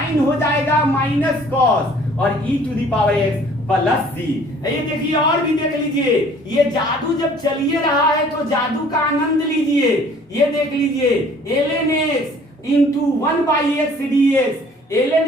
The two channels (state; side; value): normal; both; correlation 0.54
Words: हो जाएगा माइनस कॉस और e to the power x plus c. ये देखिए और भी देख लीजिए, ये जादू जब चलिए रहा है तो जादू का आनंद लीजिए। ये देख लीजिए ln x into 1/x dx,